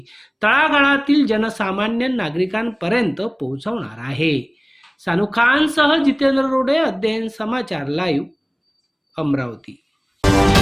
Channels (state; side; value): identical; both; correlation 1.00